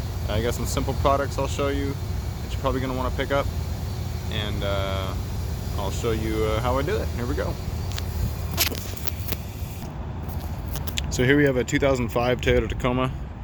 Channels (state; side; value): identical; both; correlation 1.00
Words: I got some simple products I'll show you that you're probably going to want to pick up, and I'll show you how I do it. Here we go. So here we have a 2005 Toyota Tacoma,